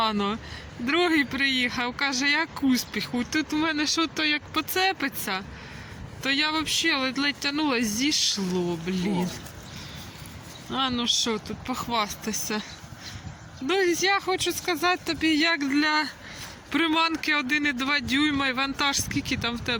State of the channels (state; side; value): identical; both; correlation 1.00